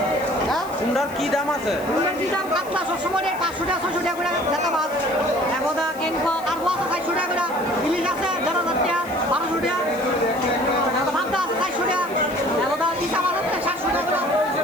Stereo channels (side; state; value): left; noise; hiss, 20 dB below the sound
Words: কুমড়ার কি দাম আছে? কাতলা সবসময় 500 টাকা 600 টাকা করে জাতা মাছ একদা কেনকো আর বস 400 টাকা করে ইলিশ আছে 1000 টাকা 1200 টাকা ভাবটা আছে 400 টাকা একদা চিতা মাছ আছে 700 টাকা